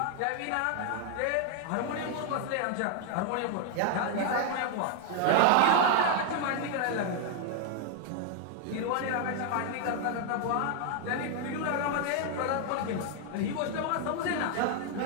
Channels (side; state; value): both; different; correlation 0.00